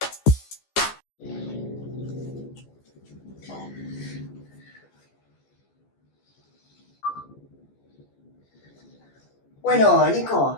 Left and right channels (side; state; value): right; late; 14 ms